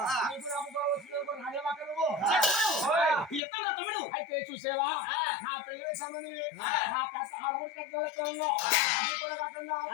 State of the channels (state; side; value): drops out; right; at 3.4 s